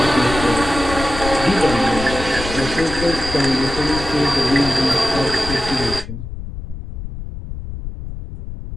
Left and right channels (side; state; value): left; noise; rumble, 9 dB below the sound